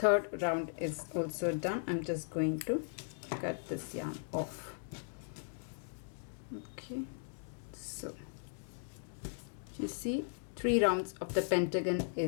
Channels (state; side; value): silent; right; digital silence